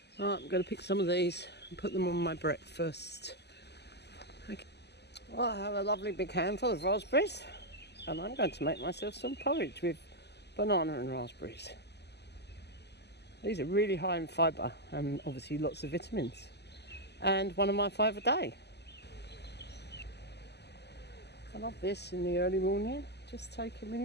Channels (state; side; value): late; right; 0.49 ms